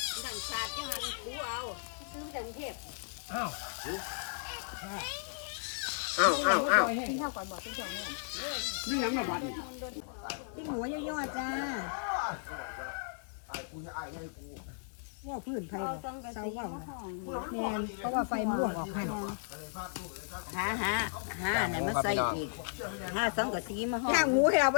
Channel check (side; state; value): right; silent; digital silence